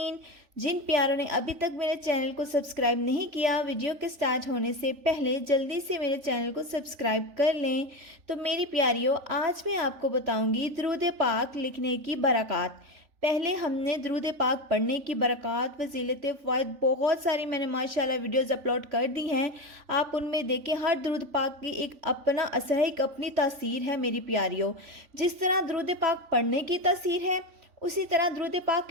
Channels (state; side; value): late; left; 3.4 ms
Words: जिन प्यारों ने अभी तक मेरे चैनल को सब्सक्राइब नहीं किया, वीडियो के स्टार्ट होने से पहले जल्दी से मेरे चैनल को सब्सक्राइब कर लें। तो मेरी प्यारियों, आज मैं आपको बताऊंगी दरूद पाक लिखने की बरक़ात। पहले हमने दरूद पाक पढ़ने की बरक़ात, फजीलत, फ़वाइद बहुत सारी मैंने माशाल्लाह वीडियोस अपलोड कर दी हैं। आप उनमें देखें, हर दरूद पाक की एक अपना असर है, एक अपनी तासीर है मेरी प्यारियों। जिस तरह दरूद पाक पढ़ने की तासीर है, उसी तरह दरूद